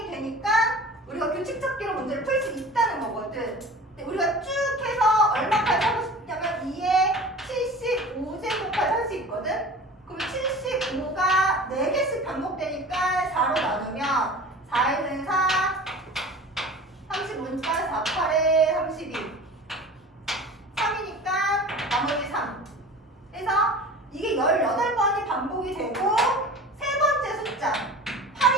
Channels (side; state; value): both; normal; correlation 0.39